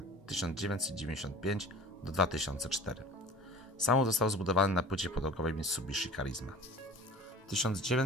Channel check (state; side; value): normal; both; correlation 0.42